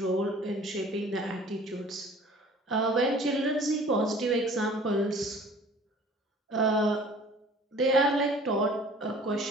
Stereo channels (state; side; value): normal; both; correlation 0.49